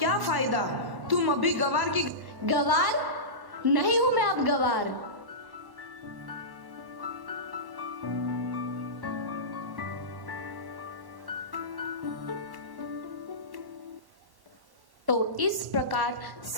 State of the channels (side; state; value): left; late; 1.1 ms